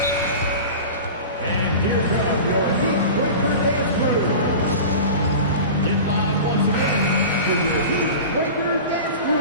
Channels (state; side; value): inverted; both; correlation -0.33